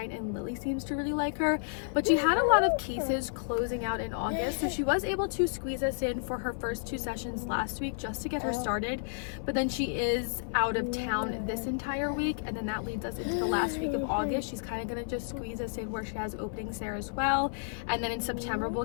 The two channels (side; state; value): right; silent; 57 dB below the other